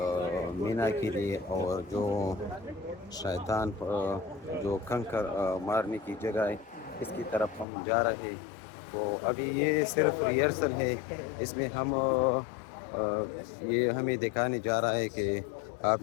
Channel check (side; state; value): right; drops out; at 7.7 s